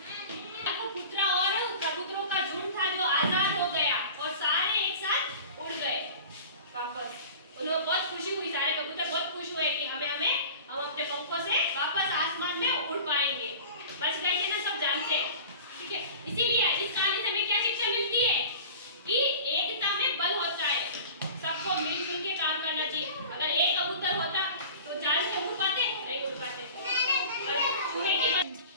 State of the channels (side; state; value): both; inverted; correlation -0.39